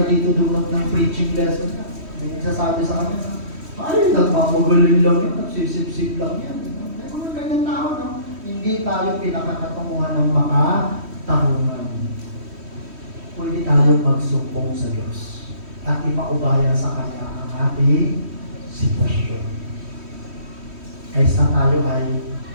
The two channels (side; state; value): left; late; 3.1 ms